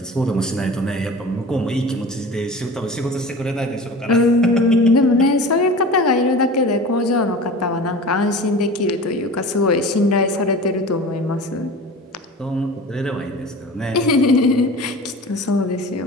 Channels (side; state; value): both; normal; correlation 0.36